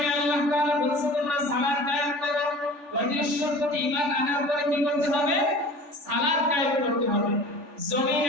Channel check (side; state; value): left; late; 3.4 ms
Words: না, আল্লাহ তাআলা বলেছেন তোমরা সালাত কায়েম করো। অবিশ্বাস প্রতি ঈমান আনার পরে কি করতে হবে? সালাত কায়েম করতে হবে।